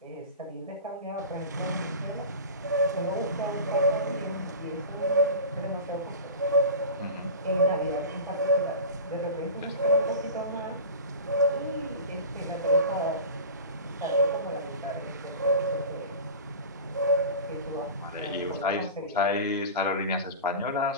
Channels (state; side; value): inverted; both; correlation -0.34